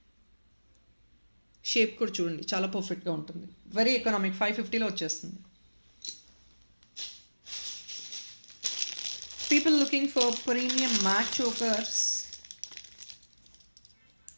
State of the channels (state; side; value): inverted; both; correlation -1.00